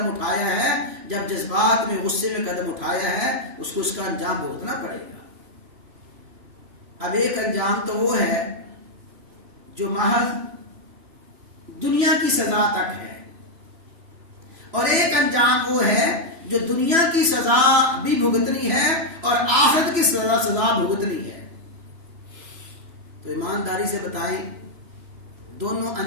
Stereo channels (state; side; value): late; left; 3.0 ms